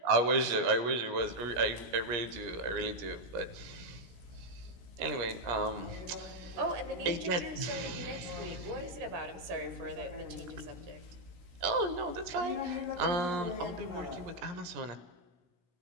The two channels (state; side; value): late; left; 17 ms